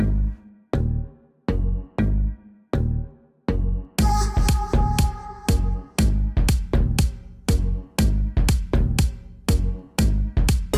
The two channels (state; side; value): identical; both; correlation 1.00